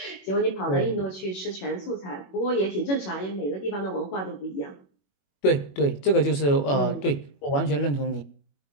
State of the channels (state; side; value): late; right; 21 ms